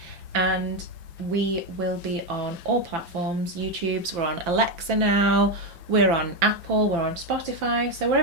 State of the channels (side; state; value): left; late; 5.9 ms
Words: And we will be on all platforms. YouTube's, we're on Alexa now. We're on Apple, we're on Spotify. So